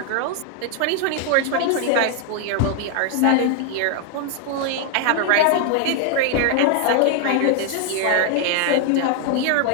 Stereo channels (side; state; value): both; different; correlation 0.00